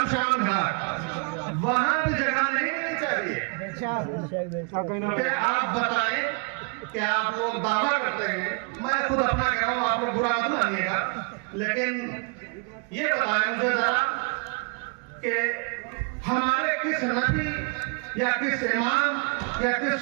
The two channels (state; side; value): quieter; left; 35.9 dB